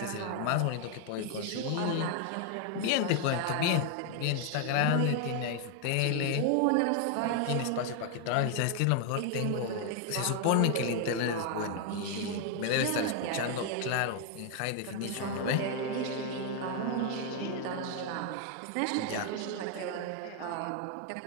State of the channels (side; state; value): both; different; correlation 0.00